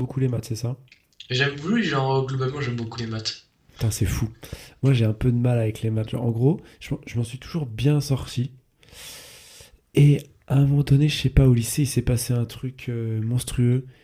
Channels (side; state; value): both; identical; correlation 1.00